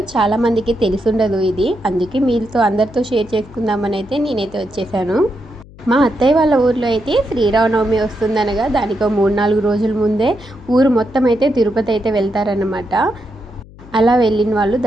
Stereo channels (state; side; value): noise; left; hum, 21 dB below the sound